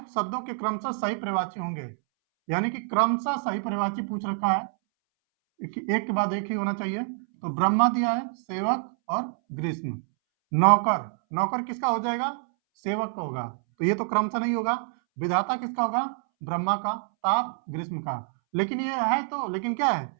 शब्दों के क्रमशः सही परिवाची होंगे, यानी कि क्रमशः सही परिवाची पूछ रखा है, एक के बाद एक ही होना चाहिए। तो ब्रह्मा दिया है, सेवक और ग्रीष्म। नौकर, नौकर किसका हो जाएगा? सेवक का होगा, तो ये तो क्रमशः नहीं होगा। विधाता किसका होगा? ब्रह्मा का। ताप ग्रीष्म का। लेकिन ये है तो, लेकिन क्या है,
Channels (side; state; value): left; silent; 60 dB below the other